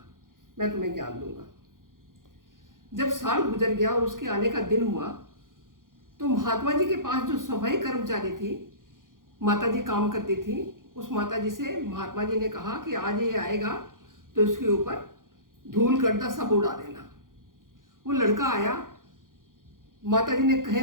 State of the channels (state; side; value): late; left; 0.90 ms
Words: मैं तुम्हें ज्ञान दूंगा। जब साल गुजर गया और उसके आने का दिन हुआ तो महात्मा जी के पास जो सफाई कर्मचारी थी, माता जी काम करती थी, उस माता जी से महात्मा जी ने कहा कि आज ये आएगा तो इसके ऊपर धूल गर्दा सब उड़ा देना। वो लड़का आया, माता जी ने कहे